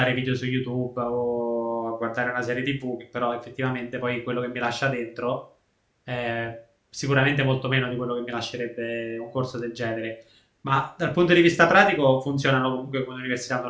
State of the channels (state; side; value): identical; both; correlation 1.00